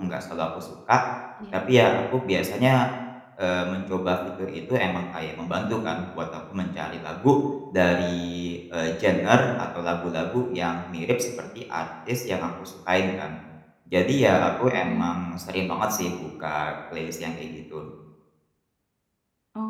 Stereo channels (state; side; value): identical; both; correlation 1.00